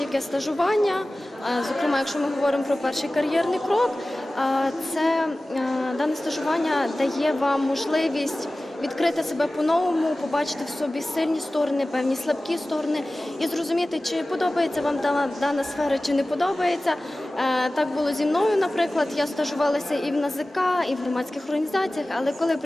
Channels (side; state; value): both; normal; correlation 0.97